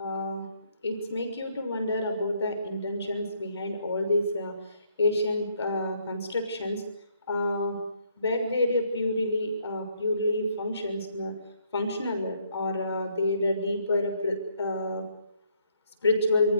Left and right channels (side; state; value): both; inverted; correlation -0.69